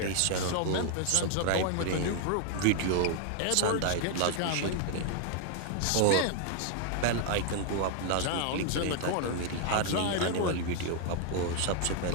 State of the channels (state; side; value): different; both; correlation 0.00